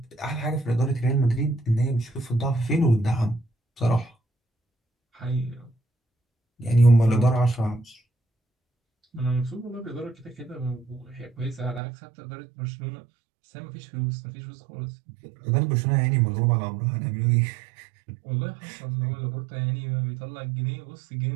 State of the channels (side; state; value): left; drops out; at 11.8 s